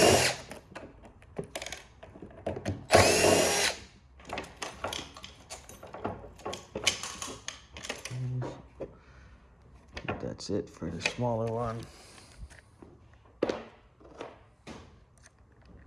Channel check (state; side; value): identical; both; correlation 1.00